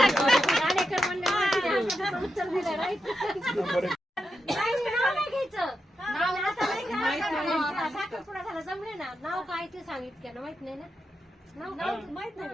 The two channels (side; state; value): both; normal; correlation 0.87